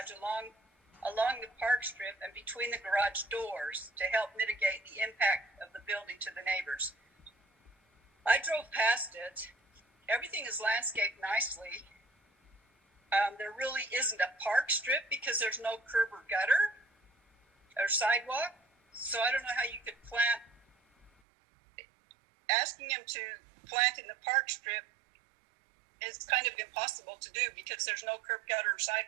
along the park strip and between the garage doors to help mitigate the impact of the building to the neighbors. I drove past it. Everything is landscaped nicely. There really isn't a park strip because there's no curb or gutter or sidewalk. So I don't know how you could plant. Asking him to plant in the park strip is kind of impossible to do because there's no curb, gutter, or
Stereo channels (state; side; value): drops out; left; at 21.1 s